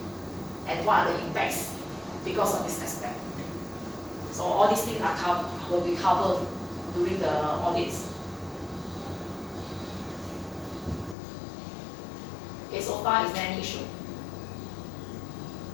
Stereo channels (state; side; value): drops out; right; at 11.2 s